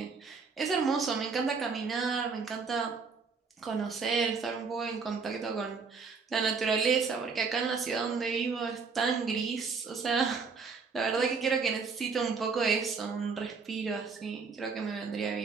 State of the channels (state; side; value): quieter; left; 5.1 dB